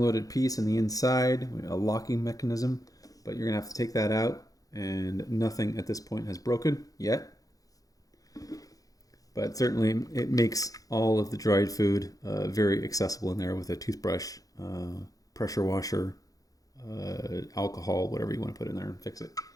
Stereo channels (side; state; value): right; late; 0.17 ms